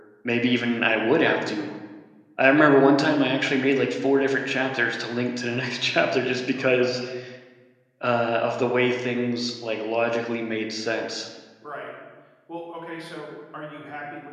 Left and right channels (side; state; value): both; identical; correlation 1.00